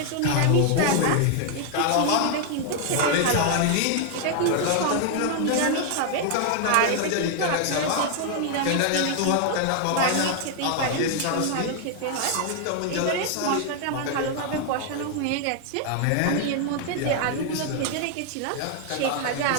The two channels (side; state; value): both; different; correlation 0.00